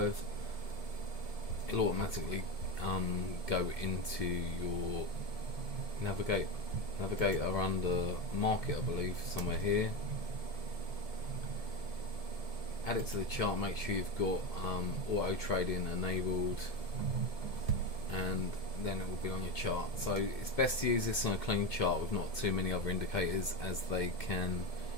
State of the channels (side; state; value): right; late; 2.1 ms